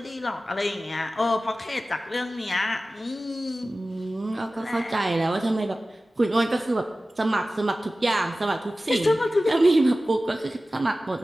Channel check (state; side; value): normal; both; correlation 0.96